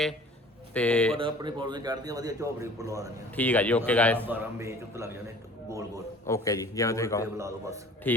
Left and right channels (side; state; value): both; normal; correlation 0.47